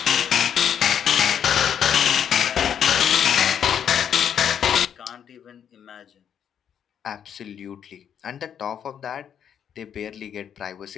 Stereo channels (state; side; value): quieter; right; 8.7 dB